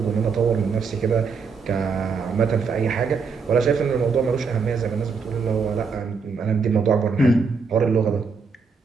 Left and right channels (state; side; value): quieter; left; 5.2 dB